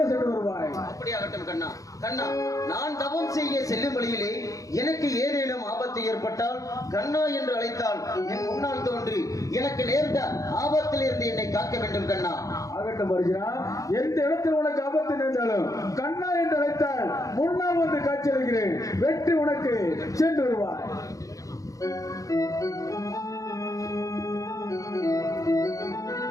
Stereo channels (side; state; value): right; late; 0.16 ms